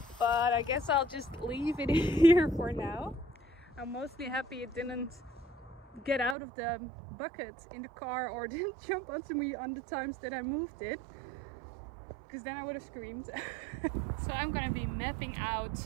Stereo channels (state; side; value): drops out; left; at 6.4 s